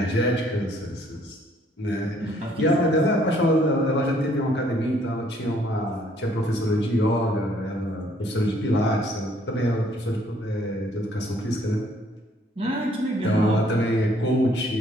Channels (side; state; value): both; normal; correlation 0.63